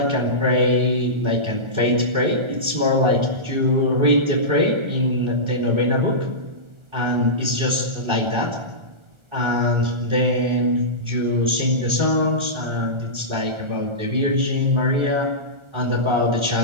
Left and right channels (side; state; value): left; late; 1.4 ms